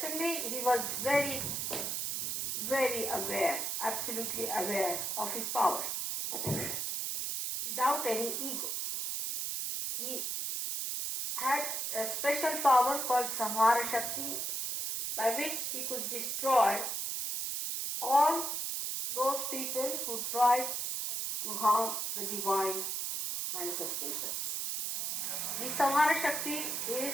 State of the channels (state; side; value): noise; right; hiss, 1 dB below the sound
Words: he was very, very aware, absolutely aware of his powers, without any ego. He had a special power called Samhara Shakti, by which he could destroy all those people who tried to harm the divine manifestations. The Samhara Shakti is